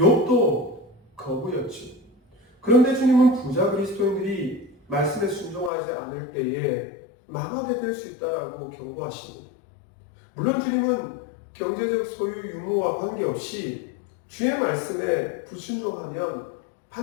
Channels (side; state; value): right; drops out; at 5.7 s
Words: 거부였죠. 그런데 주님은 부자 그리스도인들이 말씀에 순종하지 않을 때에 망하게 될 수 있다라고 경고하십니다. 물론 주님은 경제적 소유 유무와 관계없이 주의 말씀에 불순종하면